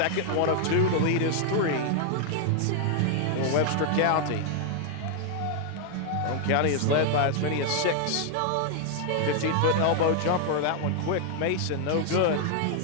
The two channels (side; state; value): both; different; correlation 0.00